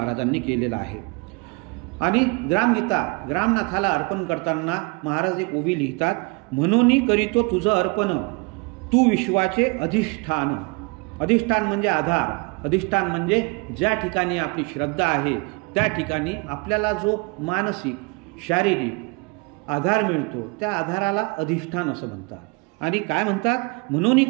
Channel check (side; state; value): left; quieter; 29.6 dB